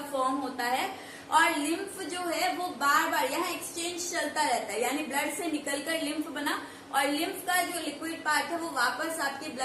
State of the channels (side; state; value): both; identical; correlation 1.00